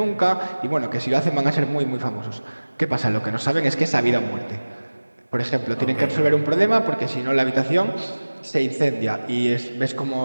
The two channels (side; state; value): both; inverted; correlation -1.00